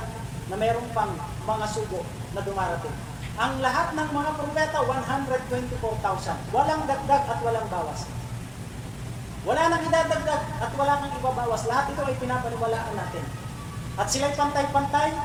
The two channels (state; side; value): identical; both; correlation 1.00